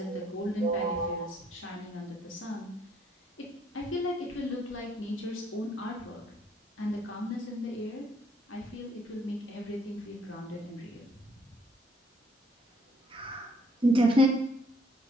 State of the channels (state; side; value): normal; both; correlation 0.64